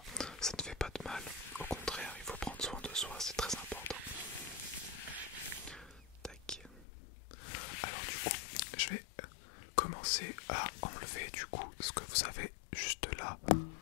ne fait pas de mal. Au contraire, il faut prendre soin de soi, c'est très important. Tac. Alors du coup, je vais commencer à enlever du coup ce que vous avez juste là.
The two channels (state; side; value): drops out; right; at 6.9 s